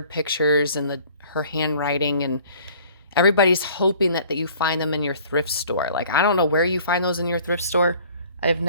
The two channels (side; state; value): both; inverted; correlation -0.52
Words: pictures and her handwriting, and everybody's hoping that you find them in your thrift store. Like, I don't know where you find those in your thrift store. I've